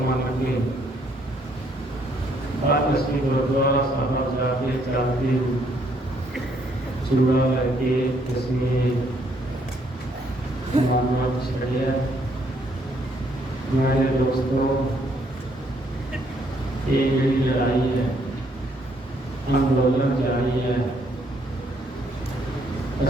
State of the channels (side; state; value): both; normal; correlation 0.69